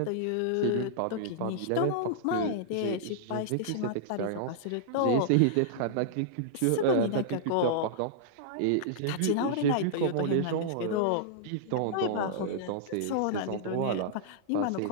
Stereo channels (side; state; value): both; different; correlation -0.02